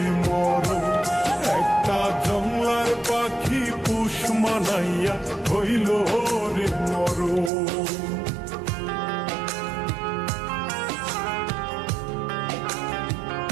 মরণ। একটা জংলার পাখি পোষ মানাইয়া হইল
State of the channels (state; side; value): drops out; left; at 7.5 s